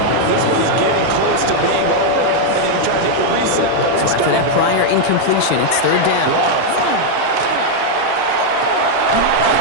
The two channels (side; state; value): both; different; correlation 0.00